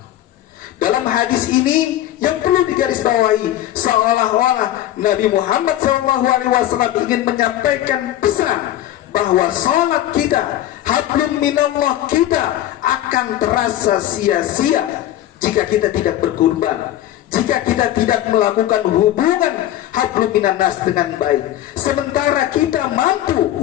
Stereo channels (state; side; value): quieter; right; 13.1 dB